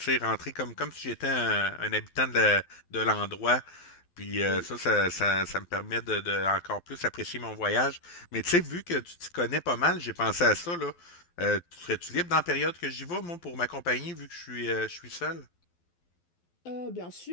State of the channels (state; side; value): late; right; 12 ms